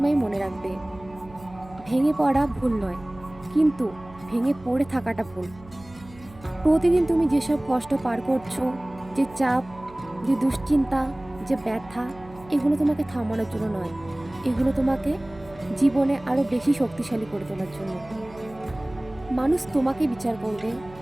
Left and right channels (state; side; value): noise; right; hum, 21 dB below the sound